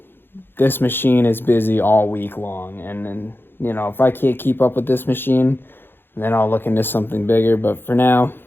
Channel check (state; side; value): late; right; 0.10 ms